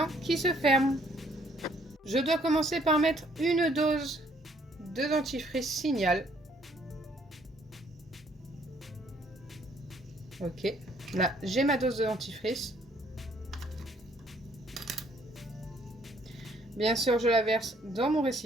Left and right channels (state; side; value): normal; both; correlation 0.64